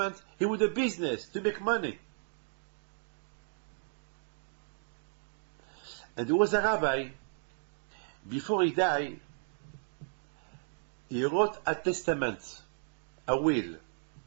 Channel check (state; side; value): silent; left; digital silence